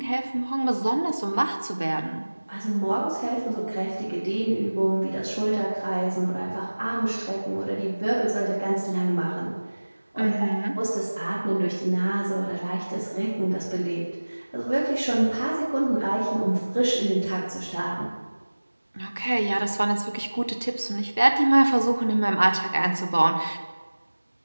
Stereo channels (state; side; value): inverted; both; correlation -1.00